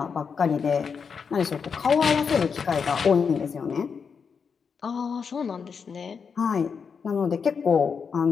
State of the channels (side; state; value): right; quieter; 6.0 dB